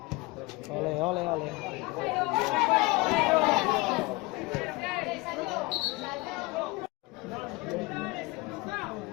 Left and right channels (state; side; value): quieter; right; 23.9 dB